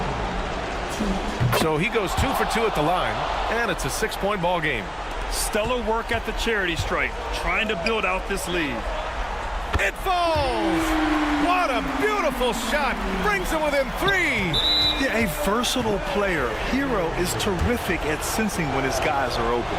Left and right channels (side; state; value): both; identical; correlation 1.00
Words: So he goes 2 for 2 at the line, and it's a 6-point ball game. Stellar work at the charity stripe, trying to build out this lead. It falls! What a beautiful shot! Brings him within 3! Yeah, a versatile player. Hero is terrific at sensing when his guys are open.